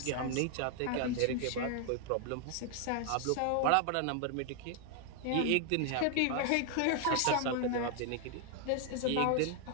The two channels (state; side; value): different; both; correlation 0.00